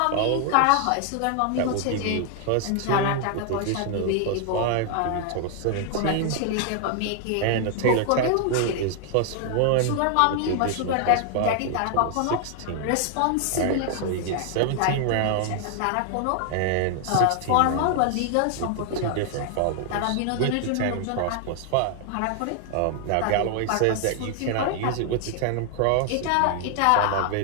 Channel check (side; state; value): both; different; correlation 0.00